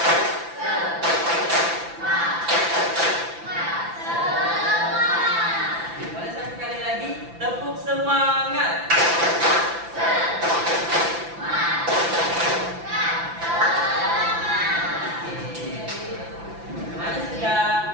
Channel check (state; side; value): late; left; 5.9 ms